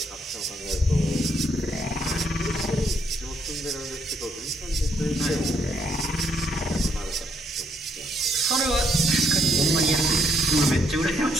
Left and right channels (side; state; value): both; normal; correlation 0.72